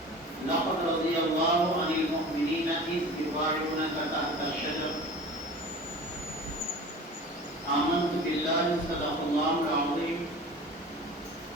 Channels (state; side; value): normal; both; correlation 0.38